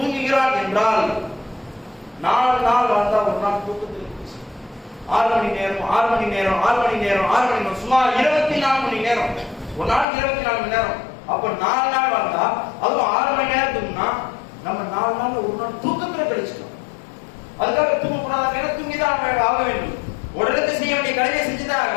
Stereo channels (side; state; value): right; drops out; at 10.1 s